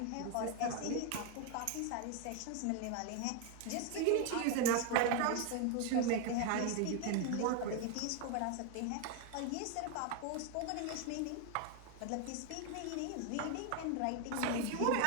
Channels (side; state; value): both; different; correlation 0.01